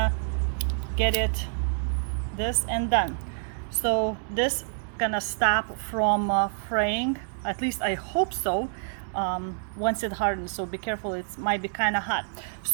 get it this and done. So this gonna stop from fraying, at least I hope so, once it hardens. So be careful, it might be kind of hot.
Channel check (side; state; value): left; silent; digital silence